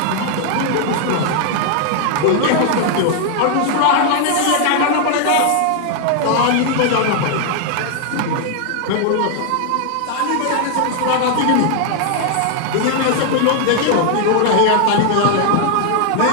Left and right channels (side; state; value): both; different; correlation 0.00